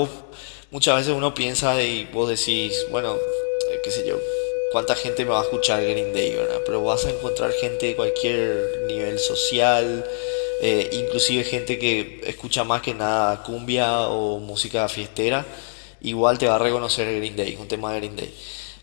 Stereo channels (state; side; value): silent; right; digital silence